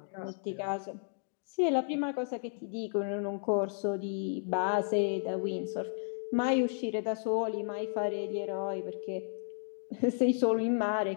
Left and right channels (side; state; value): right; silent; digital silence